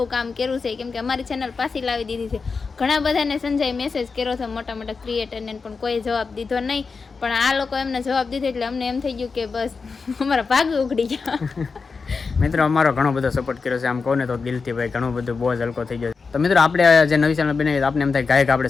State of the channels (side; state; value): right; quieter; 4.8 dB